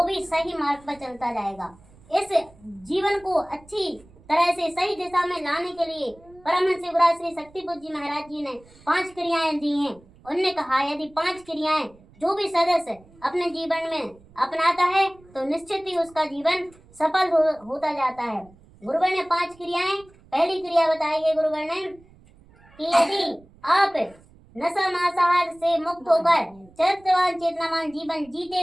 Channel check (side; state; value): right; noise; rumble, 26 dB below the sound